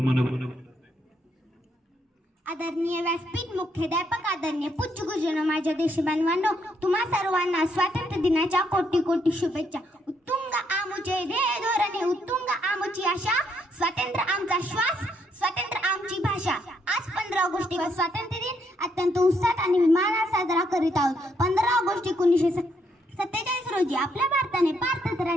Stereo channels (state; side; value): normal; both; correlation 0.74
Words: आदरणीय व्यासपीठ मुख्याध्यापक आदरणीय पूज्य गुरुजनो माझ्या देशबांधवांनो तुम्हा सर्वांना स्वातंत्र्य दिनाच्या कोटी कोटी शुभेच्छा। उत्तुंग आमुचे ध्येय धोरणे उत्तुंग आमुची आशा स्वातंत्र्य आमचा श्वास स्वातंत्र्य आमची भाषा। आज 15 ऑगस्टला स्वातंत्र्य दिन अत्यंत उत्साहात आणि विमानात साजरा करीत आहोत। 15 ऑगस्ट 1947 रोजी आपल्या भारताने